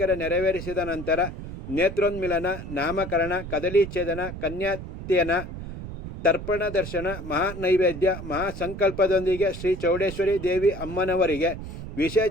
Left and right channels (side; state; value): right; noise; rumble, 10 dB below the sound